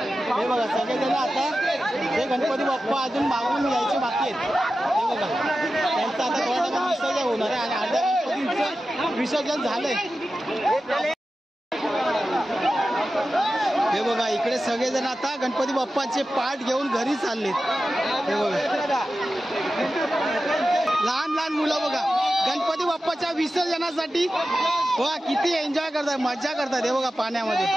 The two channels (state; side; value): normal; both; correlation 0.93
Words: बघा सगळेजण आता हे गणपती बाप्पा अजून मागून यायचे बाकी आहेत. हे बघा त्यांचं आता थोड्या टाइम विसर्जन होणार आहे आणि अर्ध्या गणपतींचं विसर्जन झालंय. हे बघा इकडे सगळेजण आता गणपती बाप्पाचे पाठ घेऊन घरी चाललेत. हे बघा लहान लहान मुलं बघा गणपती बाप्पाच्या विसर्जनासाठी बघा किती एन्जॉय करतात, मजा करतात. हे बघा पाण्यामध्ये.